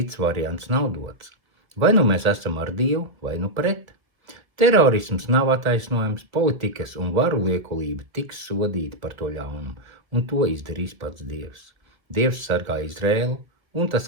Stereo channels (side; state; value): left; late; 1.6 ms